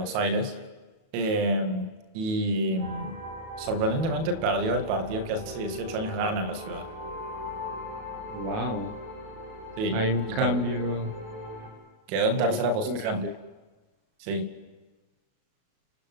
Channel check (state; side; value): late; left; 37 ms